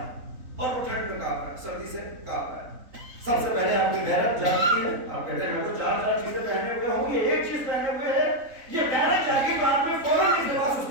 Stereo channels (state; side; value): late; left; 3.5 ms